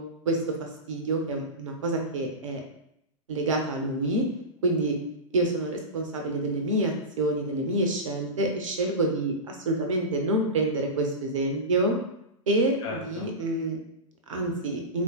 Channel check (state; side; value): normal; both; correlation -0.19